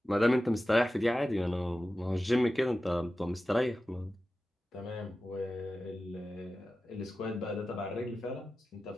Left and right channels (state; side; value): normal; both; correlation 0.94